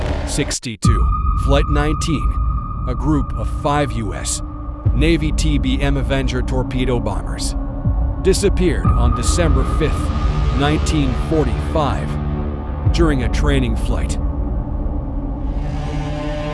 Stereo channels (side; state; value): both; identical; correlation 1.00